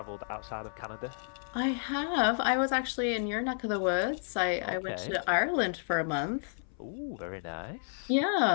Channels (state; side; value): silent; right; 56 dB below the other